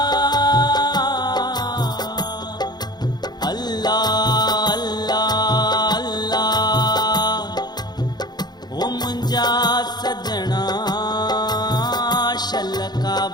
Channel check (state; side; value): late; right; 0.20 ms